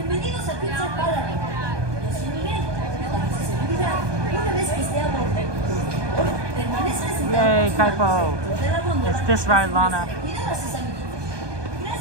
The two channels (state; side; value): late; left; 1.2 ms